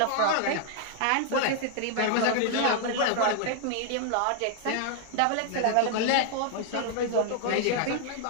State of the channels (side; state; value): both; different; correlation 0.00